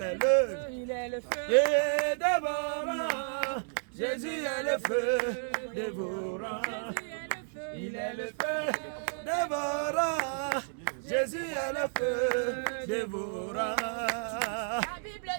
Il est le feu. et dévorant. Jésus est le feu dévorant. Il est le feu dévorant. Jésus est le feu dévorant. La Bible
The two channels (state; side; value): silent; left; digital silence